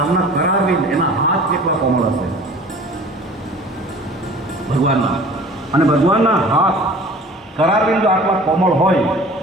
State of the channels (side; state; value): both; normal; correlation 0.45